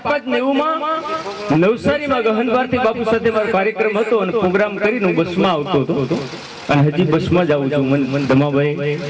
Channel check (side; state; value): both; identical; correlation 1.00